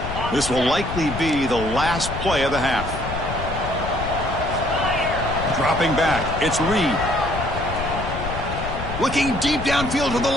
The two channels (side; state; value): left; noise; rumble, 7 dB below the sound